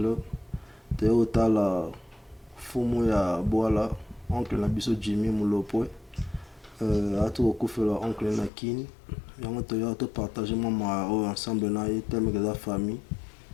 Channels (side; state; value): right; drops out; at 8.5 s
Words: toye kotala fumu ya bwala oncle na biso Jimmy Mulopwe atu kokufela oncle na kini yango toye topartage mwa oyo ensemble na ye tellement que la famille